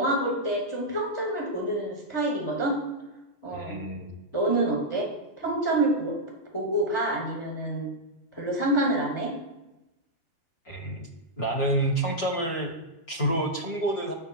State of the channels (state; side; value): late; right; 6.1 ms